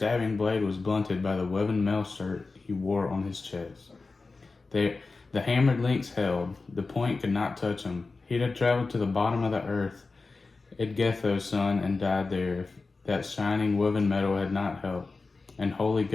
blade was blunted by the woven mail shirt he wore on his chest. The hammered links held. The point could not touch him. He'd have traveled to the bottom of the earth, Edgetho's son, and died there if that shining woven metal had not helped. And holy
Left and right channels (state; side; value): quieter; right; 3.9 dB